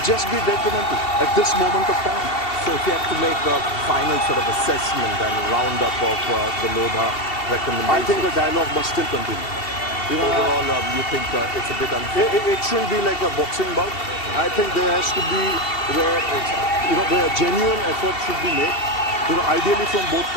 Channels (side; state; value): right; late; 2.7 ms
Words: just be detrimental at this moment of time. So if you have to make a final sort of assessment and roundup of the Lodha recommendations, I think the dialogue must still continue. You know, overall, you think it's a bit unfair? It shouldn't be like a boxing bout. I think there has to be, where a genuine effort should be made, you know, ideally from both